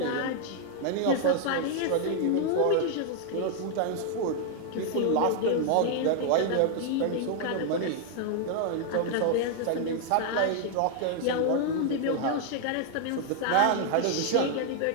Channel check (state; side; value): different; both; correlation 0.00